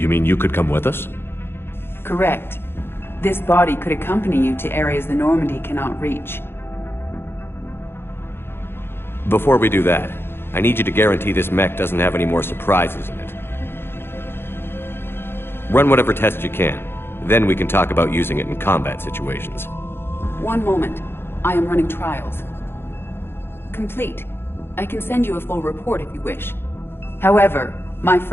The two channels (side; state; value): right; late; 0.11 ms